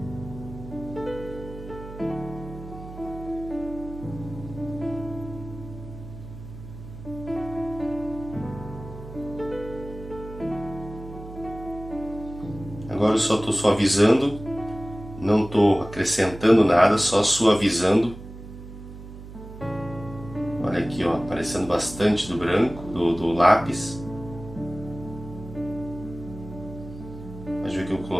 Agora eu só estou suavizando, não estou acrescentando nada, só suavizando. Olha aqui, ó, aparecendo bastante do branco, do lápis. Mas viu que eu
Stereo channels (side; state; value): right; noise; hum, 14 dB below the sound